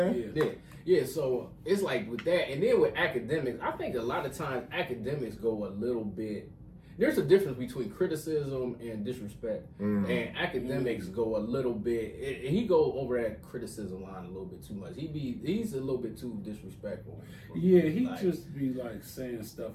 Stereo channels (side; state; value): both; identical; correlation 1.00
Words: saying? Yeah, so it's like with that, and then with academics, I think a lot of times academics go a little bit. There's a difference between criticism and disrespect, and academics go a little bit. He go over that criticism line a little bit too much. He's a little bit too disrespectful. Yeah, he like, just be like saying